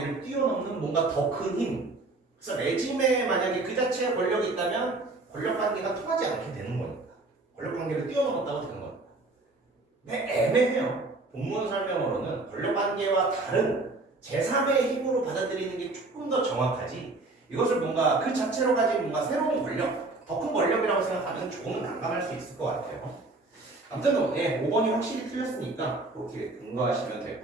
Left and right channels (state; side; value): quieter; left; 3.2 dB